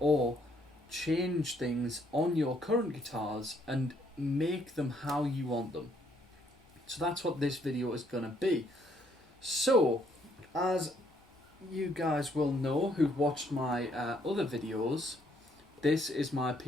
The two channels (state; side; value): normal; both; correlation 0.69